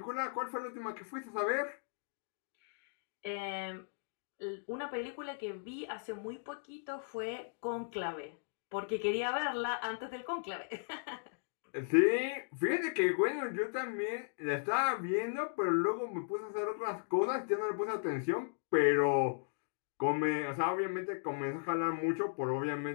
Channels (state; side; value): silent; right; digital silence